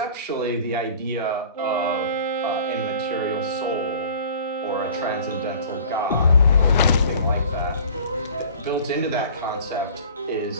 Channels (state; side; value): inverted; both; correlation -0.46